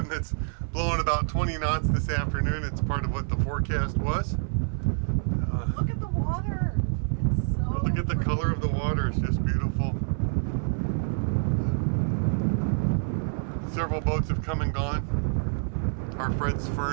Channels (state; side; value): silent; left; 60 dB below the other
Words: Blowing about 20 knots this afternoon. It's part of what the forecast was. Look at the water. It's so Look at the color of the water. It's just beautiful. Several boats have come and gone. Our Fred's